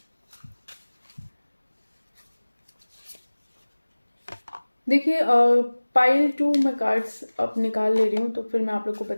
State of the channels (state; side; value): inverted; both; correlation -1.00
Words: देखिए पाइल 2 मैं कार्ड्स अब निकाल ले रही हूँ, तो फिर मैं आप लोग को